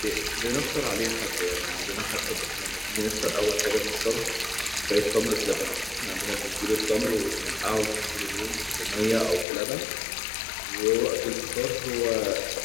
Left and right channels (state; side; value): drops out; right; at 9.5 s